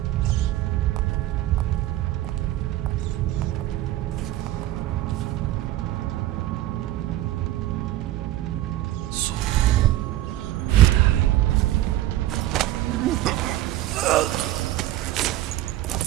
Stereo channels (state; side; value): quieter; left; 14.7 dB